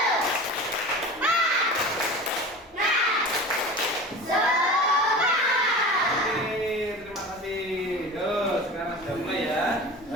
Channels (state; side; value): normal; both; correlation 0.34